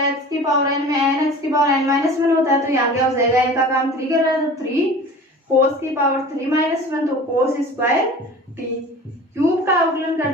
x की पावर n में n x की पावर n माइनस 1 होता है तो यहाँ क्या हो जाएगा n का काम 3 कर रहा है तो 3 कोस की पावर 3 माइनस 1 तो कोस स्क्वायर टी। क्यूब का अवकलन कर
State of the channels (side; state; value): both; normal; correlation 0.40